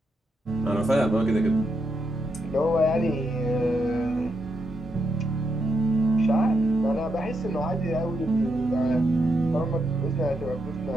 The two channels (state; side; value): normal; both; correlation 0.82